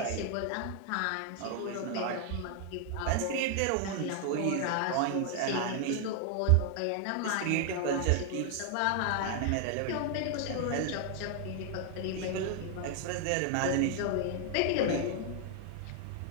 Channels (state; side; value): different; both; correlation 0.00